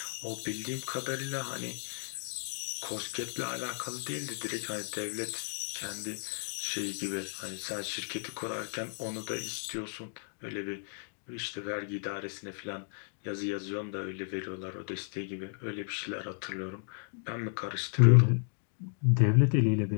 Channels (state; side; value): silent; right; 55 dB below the other